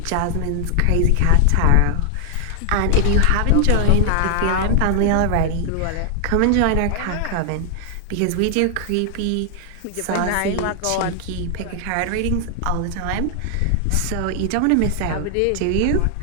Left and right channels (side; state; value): both; different; correlation 0.00